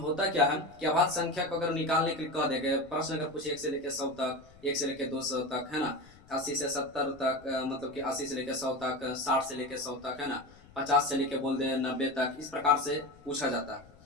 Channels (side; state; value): left; noise; rumble, 24 dB below the sound